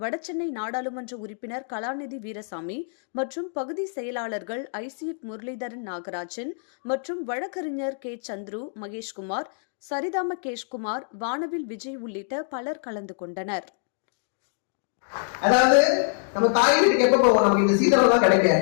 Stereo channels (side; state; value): right; silent; digital silence